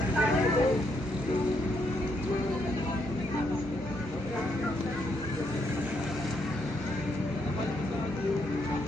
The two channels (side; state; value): both; normal; correlation 0.76